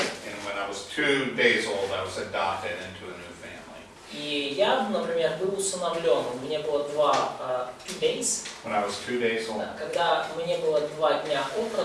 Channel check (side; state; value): both; identical; correlation 1.00